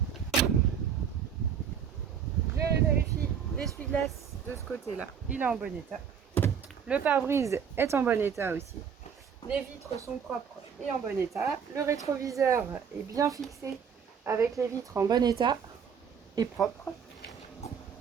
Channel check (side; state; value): left; quieter; 7.4 dB